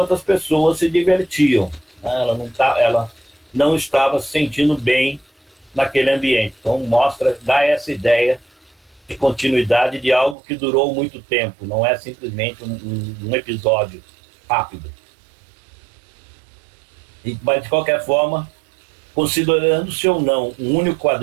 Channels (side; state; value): left; drops out; at 10.4 s